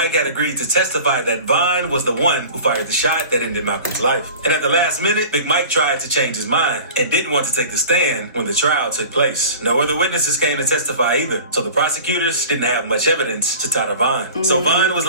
had agreed to testify that Vine was the one who fired the shot that ended Malcolm's life. And at the last minute, Big Mike tried to change his mind and didn't want to take the stand when the trial took place. No other witnesses came to testify either, so the prosecutors didn't have much evidence to tie to Vine. So Vine was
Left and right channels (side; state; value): both; inverted; correlation -0.40